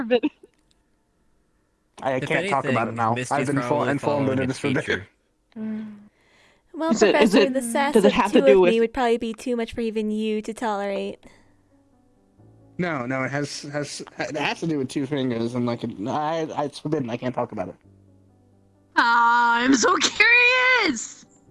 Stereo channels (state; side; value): identical; both; correlation 1.00